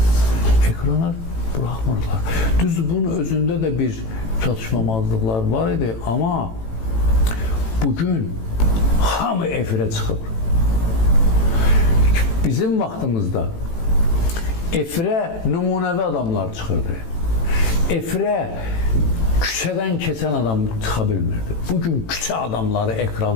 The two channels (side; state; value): right; late; 18 ms